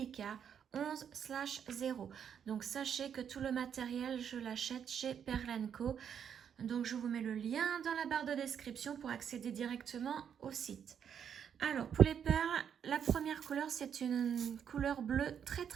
11/0. Donc sachez que tout le matériel, je l'achète chez Perle & Co. Donc je vous mets le lien dans la barre de description pour accéder directement au site. Alors, pour les perles, la première couleur, c'est une couleur bleue très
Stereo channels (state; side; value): quieter; left; 8.1 dB